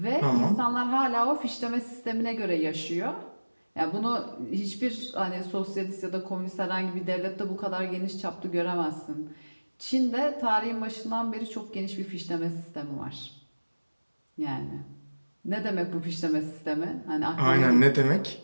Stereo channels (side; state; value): both; inverted; correlation -1.00